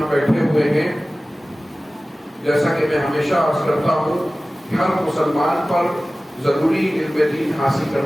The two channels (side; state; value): both; normal; correlation 0.97